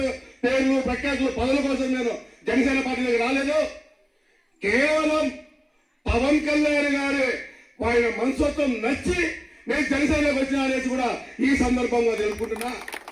పేర్లు ప్రఖ్యాతులు, పదవుల కోసం నేను జనసేన పార్టీలోకి రాలేదు. కేవలం పవన్ కళ్యాణ్ గారి ఆయన మనస్తత్వం నచ్చి నేను జనసేనలోకి వచ్చిన అనేసి కూడా ఈ సందర్భంగా తెలుపుకుంటున్నా.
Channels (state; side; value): identical; both; correlation 1.00